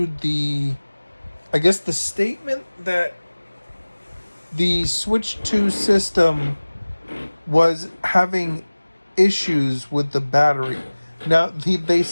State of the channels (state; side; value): inverted; both; correlation -1.00